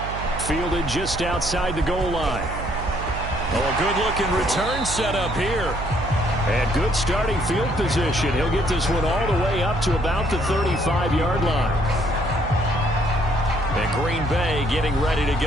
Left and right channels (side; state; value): right; noise; hum, 8 dB below the sound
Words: Fielded just outside the goal line. Oh, a good-looking return set up here. And good starting field position. He'll get this one all the way up to about the 35-yard line. And Green Bay getting ready to